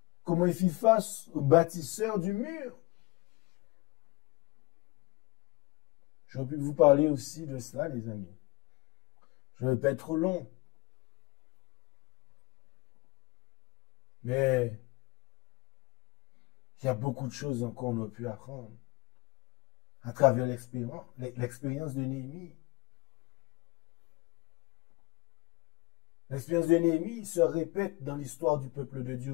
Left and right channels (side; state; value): right; quieter; 23.2 dB